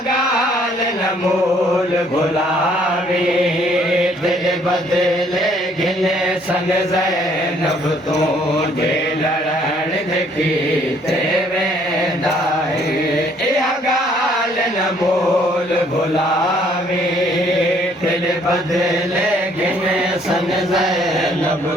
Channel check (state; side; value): normal; both; correlation 0.63